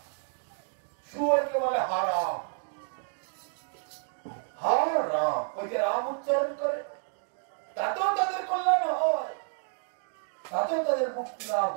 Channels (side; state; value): left; silent; digital silence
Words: শুয়োরকে বলে হারাম, হারাম, ওই যে রাম উচ্চারণ করে, তাতেও তাদের কল্যাণ হয়, তাতেও তাদের মুক্তি লাভ